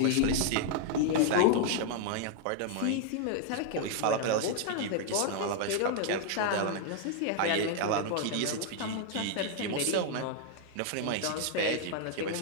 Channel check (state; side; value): different; both; correlation 0.00